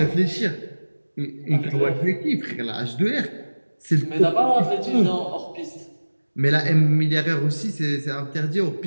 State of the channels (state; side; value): inverted; both; correlation -1.00